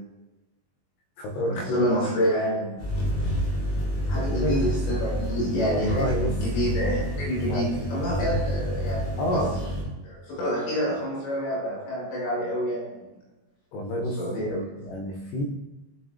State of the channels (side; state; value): right; late; 21 ms